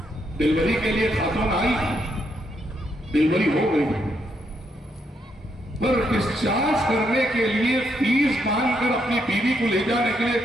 ڈلیوری کے لیے خاتون آئی، ڈلیوری ہو گئی، پر ڈسچارج کرنے کے لیے فیس باندھ کر اپنی بیوی کو لے جانے کے لیے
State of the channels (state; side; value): normal; both; correlation 0.77